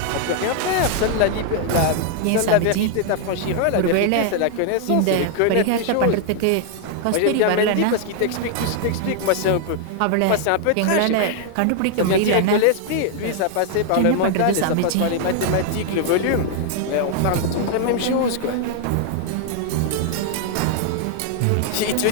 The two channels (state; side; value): different; both; correlation 0.00